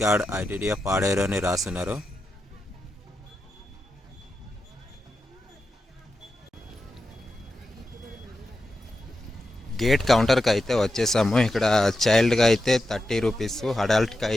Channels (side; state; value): both; normal; correlation 0.89